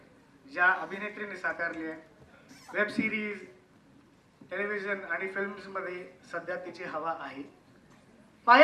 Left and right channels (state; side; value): identical; both; correlation 1.00